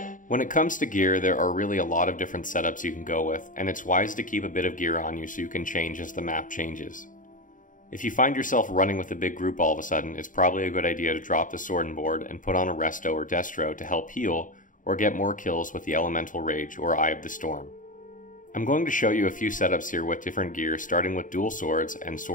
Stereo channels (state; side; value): late; right; 0.38 ms